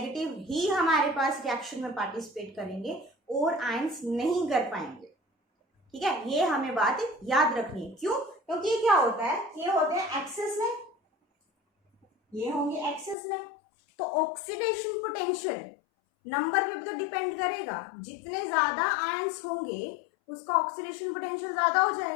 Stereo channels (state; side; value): drops out; right; at 13.2 s